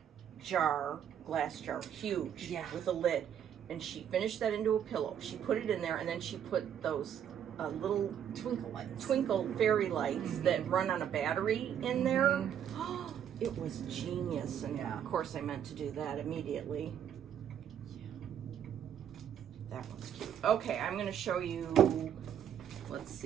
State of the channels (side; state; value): left; quieter; 9.2 dB